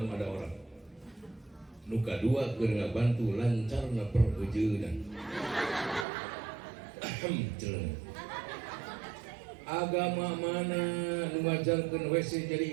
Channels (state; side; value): drops out; left; at 6.1 s